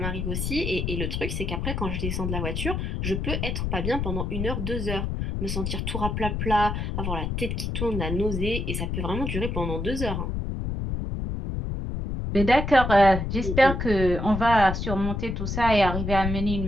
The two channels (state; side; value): noise; left; rumble, 2 dB below the sound